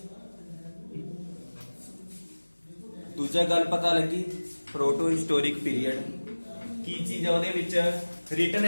ਦੂਜਾ ਗੱਲ ਪਤਾ ਲੱਗੀ ਪ੍ਰੋਟੋ ਹਿਸਟੋਰਿਕ ਪੀਰੀਅਡ ਕੀ ਚੀਜ਼ ਹੈ, ਉਹਦੇ ਵਿੱਚ ਰਿਟਨ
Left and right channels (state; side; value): inverted; both; correlation -1.00